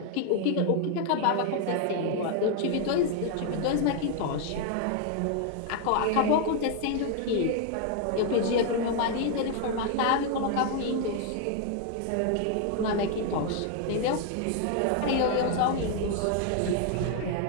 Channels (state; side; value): different; both; correlation 0.00